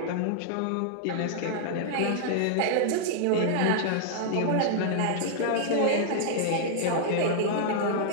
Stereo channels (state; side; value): different; both; correlation -0.01